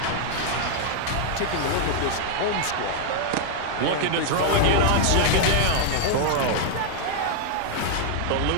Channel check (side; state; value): both; different; correlation 0.00